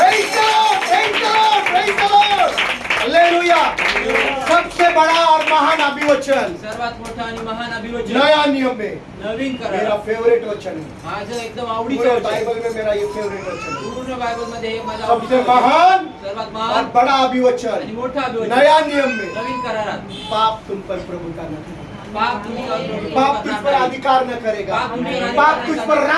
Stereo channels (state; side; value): identical; both; correlation 1.00